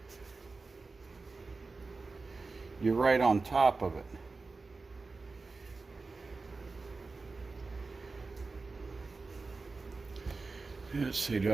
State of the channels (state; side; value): quieter; left; 3.9 dB